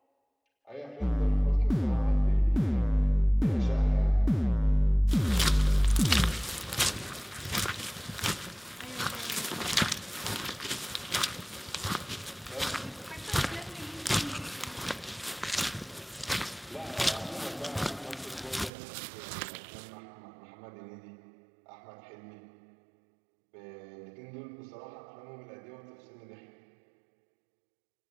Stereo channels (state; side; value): drops out; left; at 18.7 s